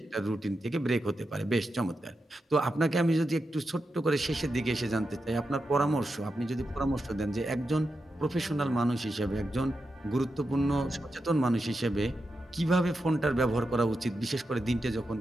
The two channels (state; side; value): normal; both; correlation 0.88